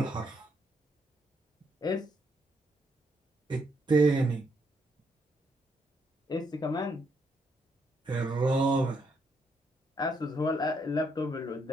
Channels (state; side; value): normal; both; correlation 0.75